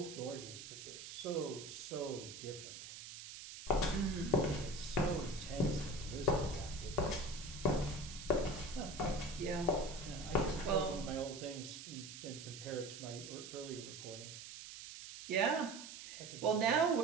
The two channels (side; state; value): right; noise; hiss, 11 dB below the sound